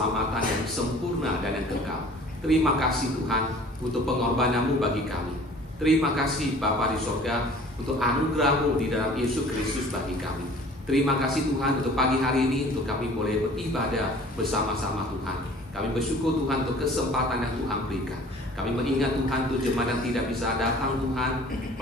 yang sempurna dan yang kekal. Terima kasih Tuhan untuk pengorbanan-Mu bagi kami. Terima kasih Bapa di surga untuk anugerah-Mu di dalam Yesus Kristus bagi kami. Terima kasih Tuhan untuk pagi hari ini, untuk kami boleh beribadah bersama-sama Tuhan. Kami bersyukur Tuhan untuk kesempatan yang Tuhan berikan. Kami mengingat Tuhan untuk jemaat yang tidak bisa datang Tuhan,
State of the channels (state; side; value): normal; both; correlation 0.49